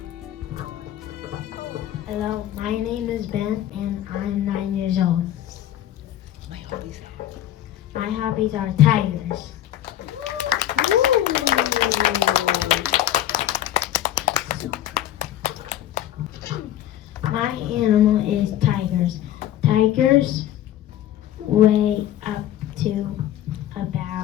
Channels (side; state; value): right; quieter; 12.4 dB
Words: Hello, my name is Ben and I'm 9 years old. My hobbies are tigers. My animal is tigers. Tigers weigh up to